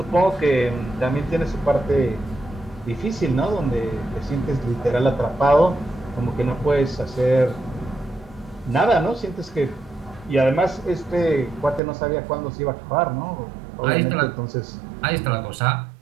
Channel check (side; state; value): left; drops out; at 11.8 s